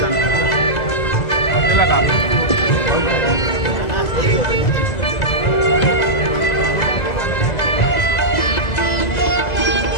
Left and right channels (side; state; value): right; late; 2.0 ms